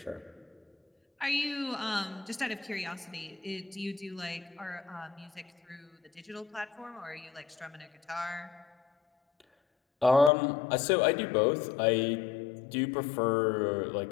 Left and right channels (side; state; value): right; drops out; at 10.3 s